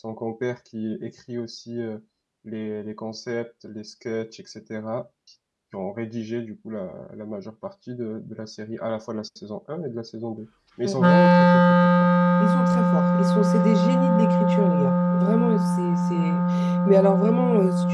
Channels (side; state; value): both; identical; correlation 1.00